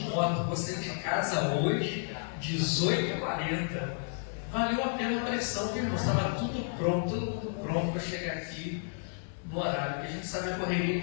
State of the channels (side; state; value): right; silent; digital silence